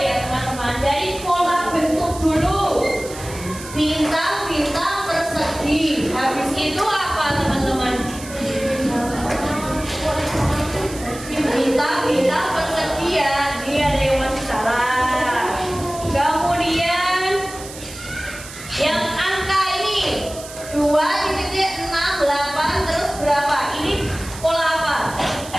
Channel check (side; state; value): right; noise; hiss, 14 dB below the sound